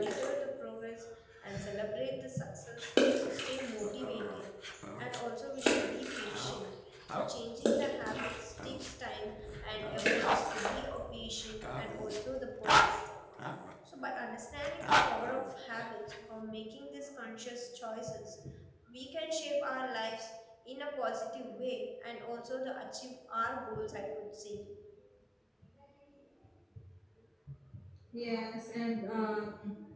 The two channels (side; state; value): both; identical; correlation 1.00